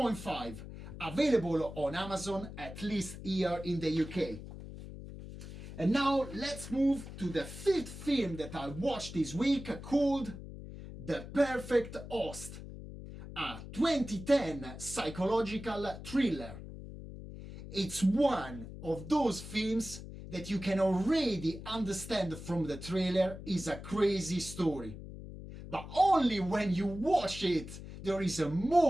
available on Amazon, at least here in the UK. And now let's move to the fifth film that I watched this week, called The Perfect Host, a 2010 psychological thriller. It's one of those films that you can already understand from the trailer is a crazy story. But only when you watch it, there is a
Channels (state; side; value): noise; left; hum, 12 dB below the sound